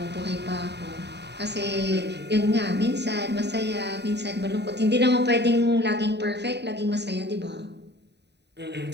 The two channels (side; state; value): left; late; 0.50 ms